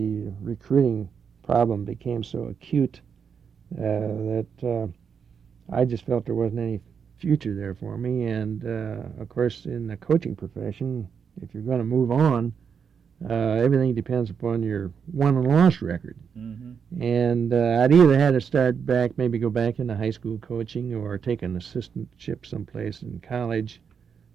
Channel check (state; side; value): quieter; left; 6.8 dB